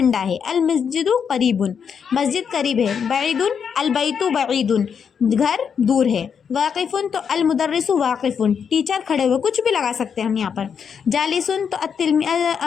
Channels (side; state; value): right; quieter; 7.0 dB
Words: ہے۔ المسجد قریب، مسجد قریب ہے۔ بعید، البیت بعید، گھر دور ہے۔ واقف، تو المدرس واقف، ٹیچر کھڑے ہوئے، کچھ بھی لگا سکتے ہیں ہم یہاں پر۔ جالس، تو